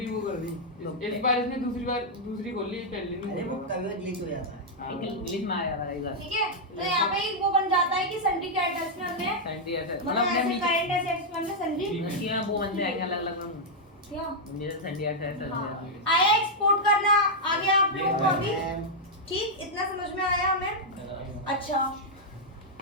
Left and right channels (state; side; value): normal; both; correlation -0.04